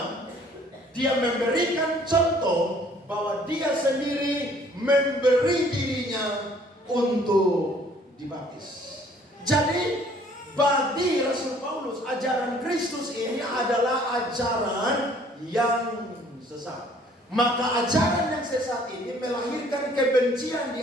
Dia memberikan contoh bahwa dia sendiri memberi dirinya untuk dibaptis. Jadi bagi Rasul Paulus, ajaran Kristus ini adalah ajaran yang sesat. Maka ajaran yang sesat ini melahirkan kebencian di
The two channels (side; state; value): both; normal; correlation 0.58